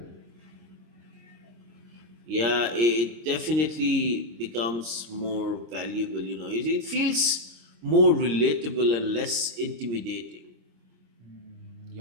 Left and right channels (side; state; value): left; late; 26 ms